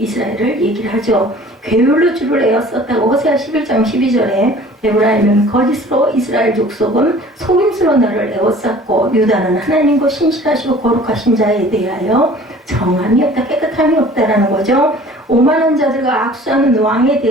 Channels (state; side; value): normal; both; correlation 0.48